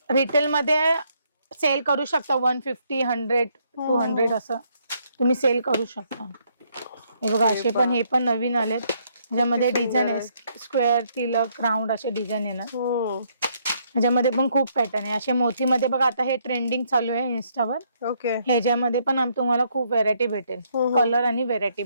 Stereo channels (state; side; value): inverted; both; correlation -0.71